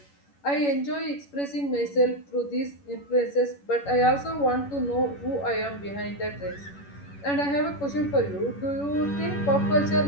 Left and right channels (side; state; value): right; late; 11 ms